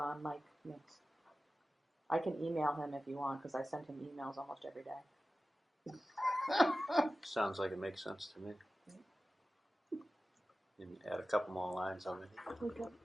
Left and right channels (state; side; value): normal; both; correlation 0.95